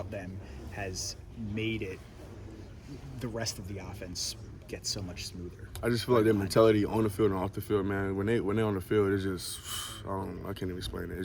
them has made it the rest of the offense get so much smoother? I just feel like their mentality on the field and off the field, man. When they're on the field, it's just I can't even explain it.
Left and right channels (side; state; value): both; identical; correlation 1.00